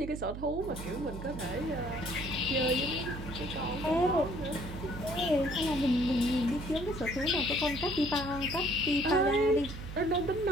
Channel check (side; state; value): right; noise; hum, 9 dB below the sound